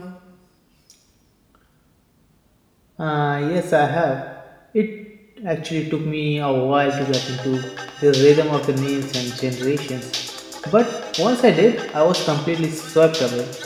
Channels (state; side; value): identical; both; correlation 1.00